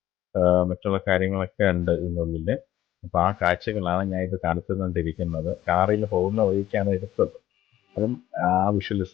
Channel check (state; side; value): quieter; right; 13.4 dB